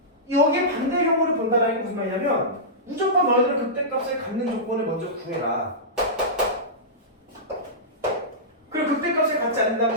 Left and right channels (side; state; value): both; normal; correlation -0.16